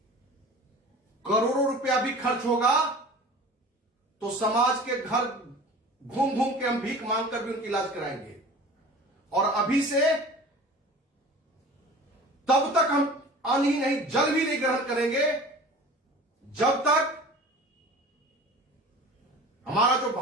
करोड़ों रुपया भी खर्च होगा तो समाज के घर घूम घूम के हम भीख मांगकर भी उनका इलाज कराएंगे। और अभी से तब तक हम अन्न ही नहीं, जल भी नहीं ग्रहण करेंगे जब तक हमारा जो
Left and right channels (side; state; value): both; normal; correlation 0.40